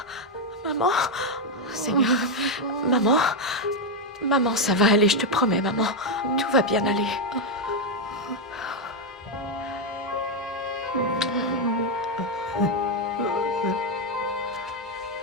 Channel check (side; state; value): both; normal; correlation 0.03